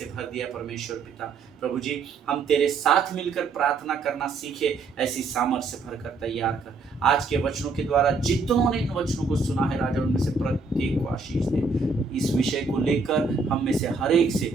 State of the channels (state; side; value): quieter; left; 4.3 dB